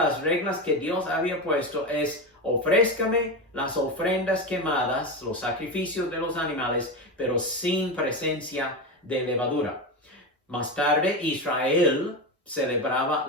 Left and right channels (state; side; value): normal; both; correlation 0.18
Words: reglas que Dios había puesto es: ofrézcame las ofrendas quemadas, los sacrificios de los animales, pero sin presencia de levadura. Más tarde, Israel celebraba